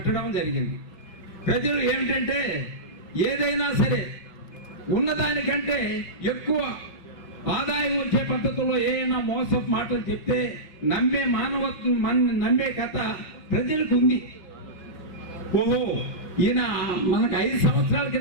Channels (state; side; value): late; right; 6.0 ms